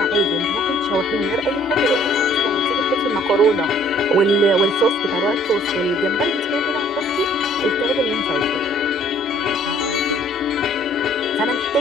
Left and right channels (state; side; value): normal; both; correlation 0.58